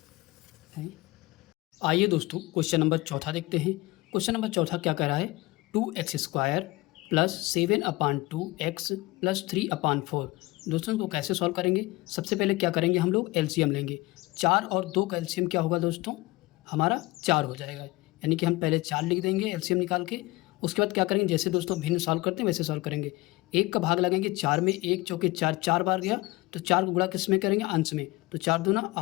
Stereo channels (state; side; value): quieter; right; 21.2 dB